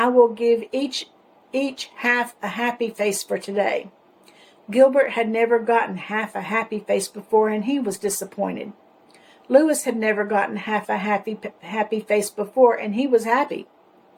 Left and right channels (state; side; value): identical; both; correlation 1.00